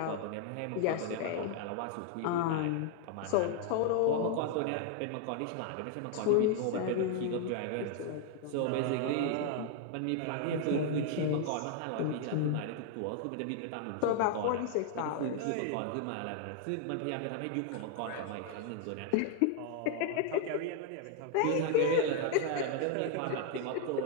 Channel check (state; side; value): different; both; correlation 0.00